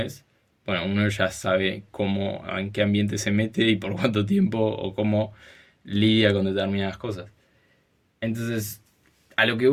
bueno, uno ya sabe cómo, en qué ambiente se mete y por cuánto tiempo o cómo lidia con determinadas cosas. Entonces, a lo que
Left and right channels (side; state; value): both; identical; correlation 1.00